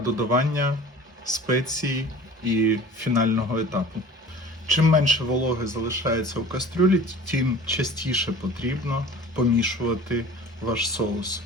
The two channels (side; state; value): both; normal; correlation 0.43